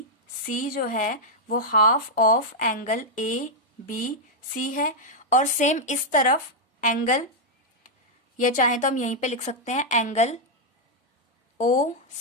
सी जो है वो half of angle A B C है। और सेम इस तरफ एंगल, ये चाहे तो हम यहीं पे लिख सकते हैं एंगल ओ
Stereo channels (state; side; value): normal; both; correlation -0.04